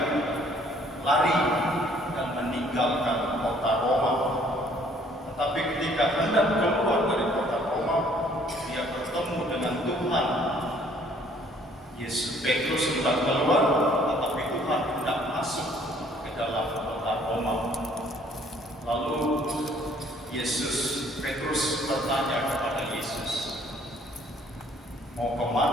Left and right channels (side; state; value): both; normal; correlation 0.60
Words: lari dan meninggalkan kota Roma. Tetapi ketika hendak keluar dari kota Roma, dia bertemu dengan Tuhan. Yesus Petrus hendak keluar, tetapi Tuhan hendak masuk ke dalam kota Roma. Lalu Petrus bertanya kepada Yesus, "Mau